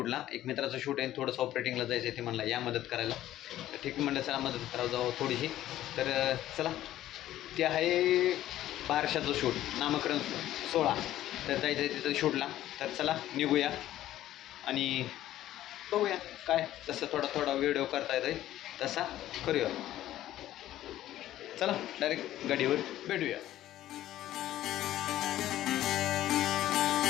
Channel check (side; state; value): right; quieter; 13.5 dB